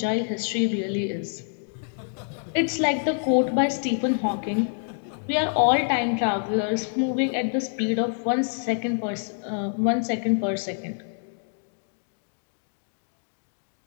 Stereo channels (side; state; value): right; silent; 59 dB below the other